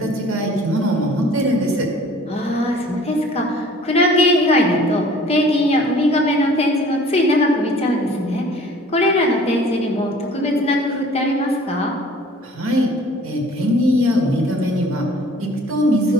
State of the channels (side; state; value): both; normal; correlation 0.51